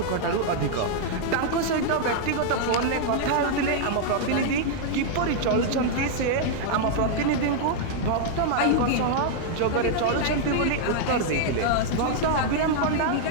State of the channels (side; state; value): both; different; correlation -0.01